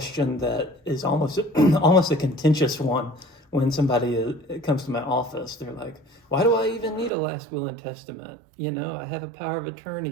that is almost almost a contentious one. When somebody comes to my office, they're like, "Why do I even need a last will and testament? I have a power of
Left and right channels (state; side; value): drops out; left; at 7.1 s